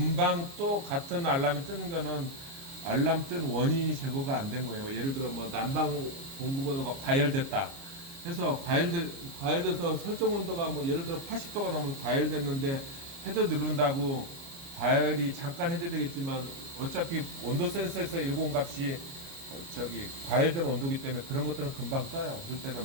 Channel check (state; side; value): late; left; 29 ms